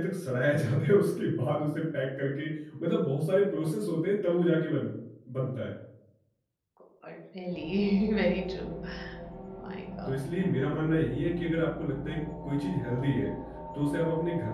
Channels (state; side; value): identical; both; correlation 1.00